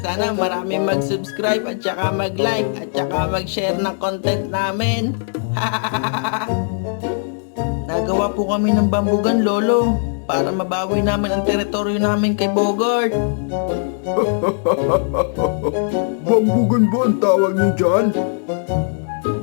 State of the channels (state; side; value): silent; right; 66 dB below the other